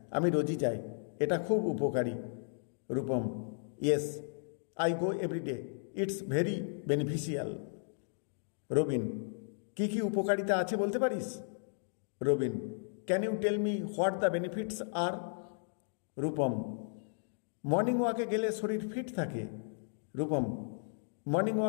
আমি রোজই যাই, এটা খুব উপকারী। Rupam, yes, I go everyday, it's very beneficial. Robin, কি কি উপকারিতা আছে বলতে পারিস? Robin, can you tell me what the benefits are? Rupam, morning ওয়াকে গেলে শরীর ফিট থাকে। Rupam, morning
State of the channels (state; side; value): silent; right; digital silence